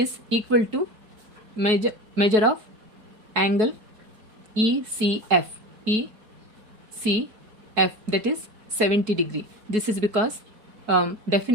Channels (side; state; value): left; late; 4.6 ms